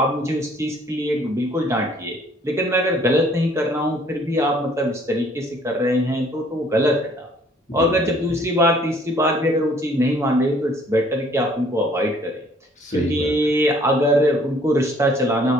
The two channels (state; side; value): normal; both; correlation 0.59